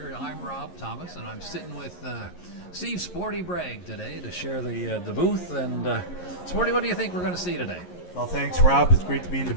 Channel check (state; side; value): late; right; 11 ms